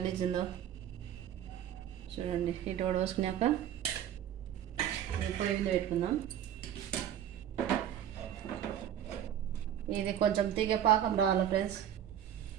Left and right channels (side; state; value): left; quieter; 10.3 dB